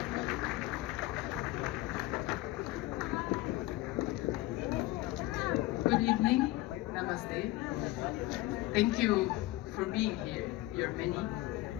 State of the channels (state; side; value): quieter; right; 17.2 dB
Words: Good evening, namaste. Thank you for being here, you're many.